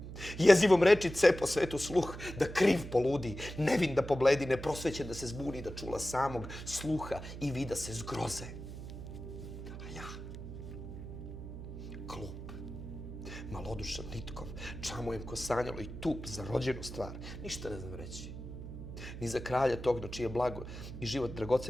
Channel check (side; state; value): right; noise; hum, 10 dB below the sound